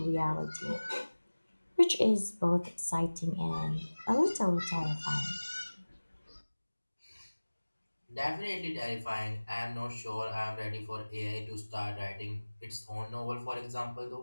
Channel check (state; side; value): inverted; both; correlation -1.00